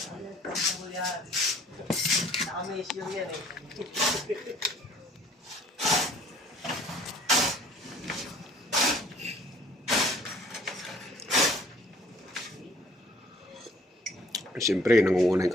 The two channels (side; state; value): both; normal; correlation 0.57